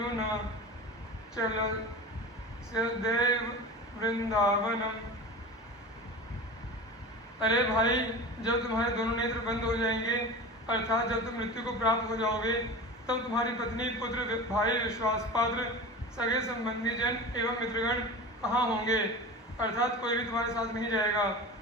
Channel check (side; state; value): both; normal; correlation 0.31